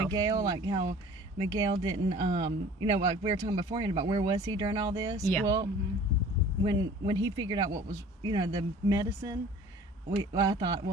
Miguel, like how Miguel didn't, like we were talking beforehand about where was he during all this. Yeah. Well, when he figured out what was, the medicine, I thought,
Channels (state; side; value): normal; both; correlation 0.47